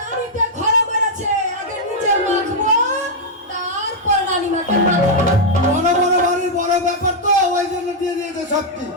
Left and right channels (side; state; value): both; normal; correlation -0.03